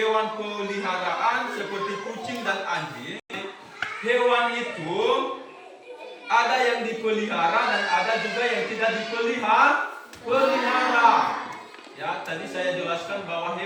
peliharaan seperti kucing dan anjing. Hewan itu ada yang dipelihara dan ada juga yang tidak dipelihara. Ya, tadi saya jelaskan bahwa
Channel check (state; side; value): identical; both; correlation 1.00